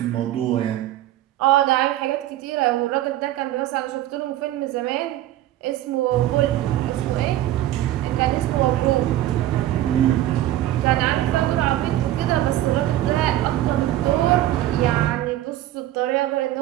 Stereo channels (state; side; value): quieter; left; 14.0 dB